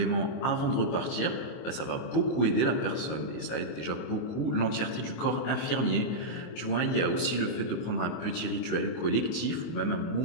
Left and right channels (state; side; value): late; right; 24 ms